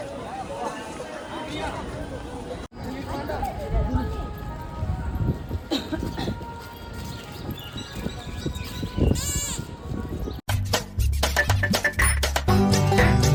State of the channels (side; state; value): both; identical; correlation 1.00